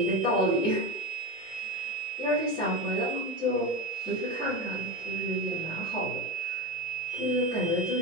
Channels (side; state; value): both; normal; correlation 0.20